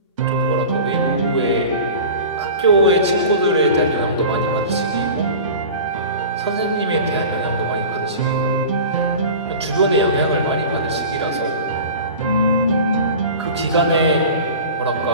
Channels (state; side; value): inverted; both; correlation -0.36